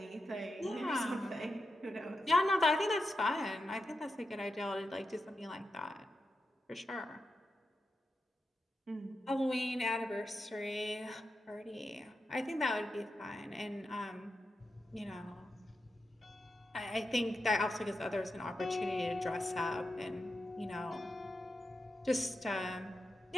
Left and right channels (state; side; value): normal; both; correlation 0.89